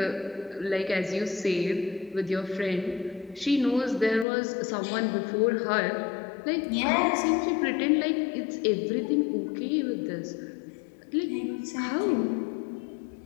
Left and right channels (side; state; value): right; drops out; at 4.2 s